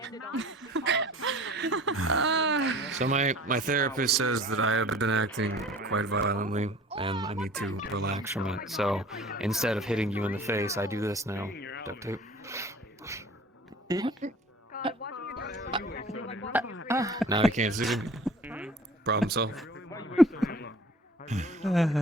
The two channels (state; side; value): normal; both; correlation 0.47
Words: So my therapist says that I have been acting quite violently, and I need to relax from it. So instead of hitting you in the face, I do this now. Duct tape. Now you can't see me. Problem solved.